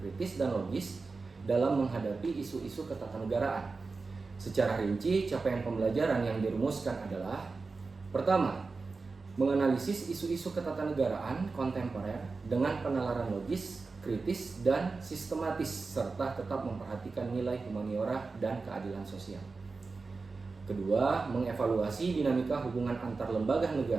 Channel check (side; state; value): left; quieter; 4.1 dB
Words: dan logis dalam menghadapi isu-isu ketatanegaraan. Secara rinci, capaian pembelajaran yang dirumuskan adalah: pertama, menganalisis isu-isu ketatanegaraan kontemporer dengan penalaran logis, kritis, dan sistematis, serta tetap memperhatikan nilai humaniora dan keadilan sosial. Kedua, mengevaluasi dinamika hubungan antar lembaga